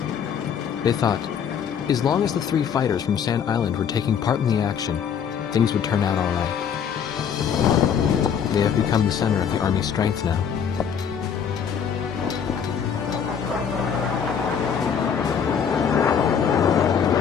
They thought, as long as the 3 fighters from Sand Island were taking part in the action, things would turn out all right. They have become the center of the Army's strength now.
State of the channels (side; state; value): right; quieter; 7.6 dB